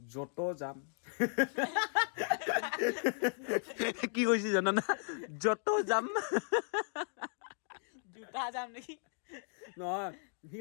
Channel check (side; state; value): right; silent; 54 dB below the other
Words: যাম কি কৈছিল জানা না য'তো যাম জোতা যাম নেকি নহয় সি